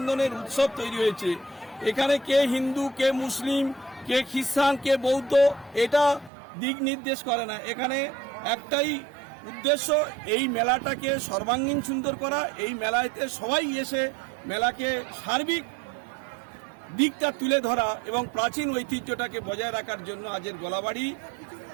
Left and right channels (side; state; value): left; drops out; at 6.3 s